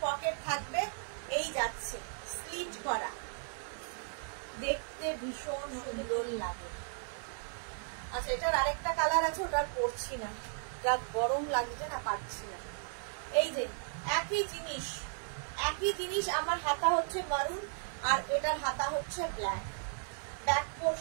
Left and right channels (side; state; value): left; silent; 54 dB below the other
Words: পকেট থাকবে, এই যাচ্ছে স্লিট করা, দেখতে ভীষণ সুন্দর লাগে। আচ্ছা, এটার আরেকটা কালার আছে, ওটা আর পরছি না, যা গরম লাগছে না, পারছি না। এই যে একই জিনিস, আমার হাতা হচ্ছে মারুন আর এটার হাতা হচ্ছে ব্ল্যাক। ব্যাক